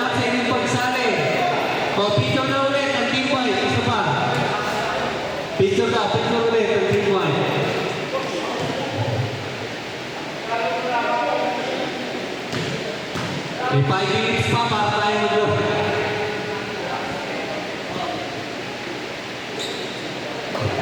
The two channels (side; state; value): both; identical; correlation 1.00